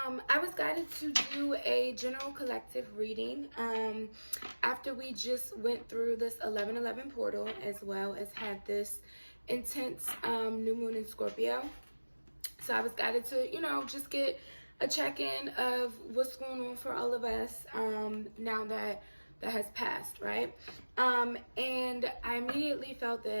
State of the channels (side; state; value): both; inverted; correlation -1.00